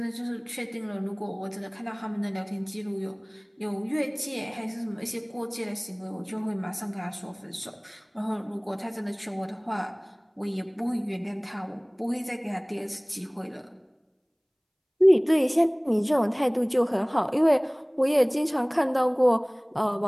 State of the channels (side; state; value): both; identical; correlation 1.00